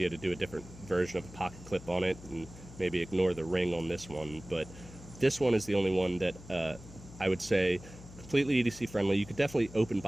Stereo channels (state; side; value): noise; left; hum, 17 dB below the sound